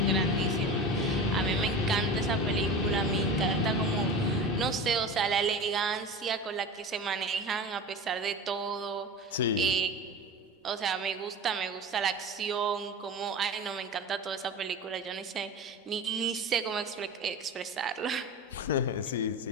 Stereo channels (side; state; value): both; normal; correlation 0.31